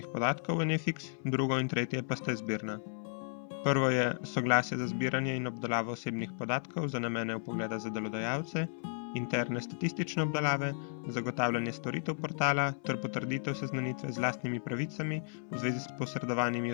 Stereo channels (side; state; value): right; silent; 55 dB below the other